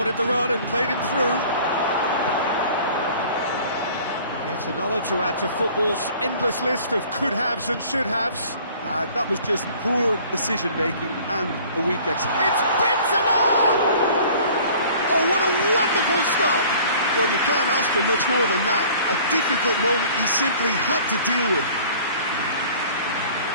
the run and played him through. Yet another to add to football's endless list of could-haves and should-haves. That was just poor decision-making and a weak execution. It's Benzema! Oh, what a wonderful stop! Well, you can't ask for much more than that. A difficult moment he simply had to deal with.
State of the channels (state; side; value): inverted; both; correlation -0.50